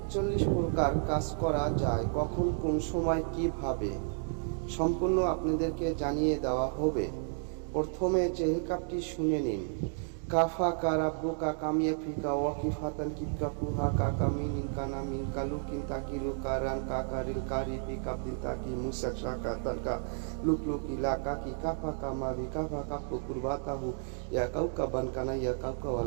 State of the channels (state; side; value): silent; left; digital silence